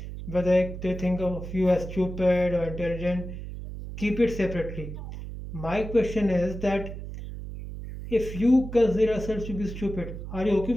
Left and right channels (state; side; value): noise; right; hum, 9 dB below the sound